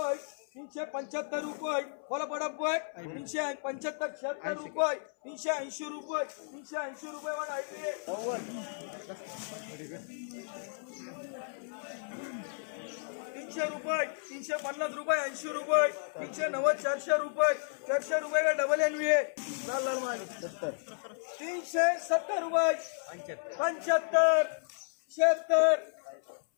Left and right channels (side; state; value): right; silent; 56 dB below the other